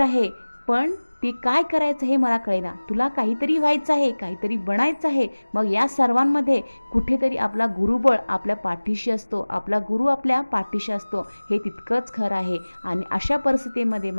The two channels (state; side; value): inverted; both; correlation -1.00